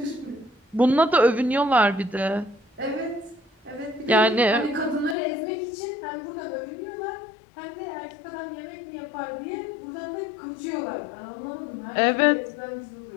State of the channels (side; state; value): right; drops out; at 5.2 s